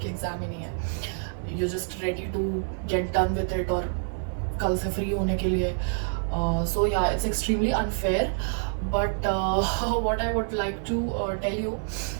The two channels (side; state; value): left; silent; digital silence